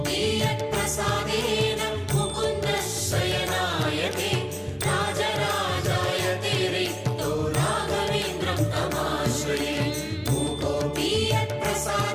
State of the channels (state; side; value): identical; both; correlation 1.00